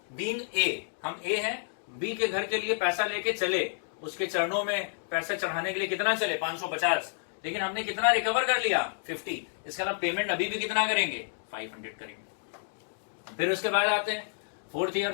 बीइंग ए, हम ए हैं, बी के घर के लिए पैसा लेके चले, उसके चरणों में पैसा चढ़ाने के लिए कितना चले 550, लेकिन हमने कितना रिकवर कर लिया 50। इसका मतलब पेमेंट अभी भी कितना करेंगे 500 करेंगे। फिर उसके बाद आते हैं फोर्थ ईयर,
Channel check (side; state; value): right; silent; digital silence